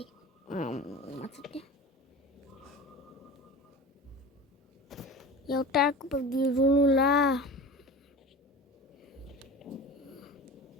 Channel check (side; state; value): both; normal; correlation 0.34